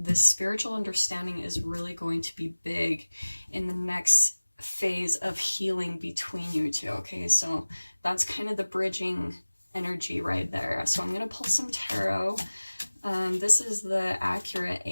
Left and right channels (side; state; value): both; inverted; correlation -1.00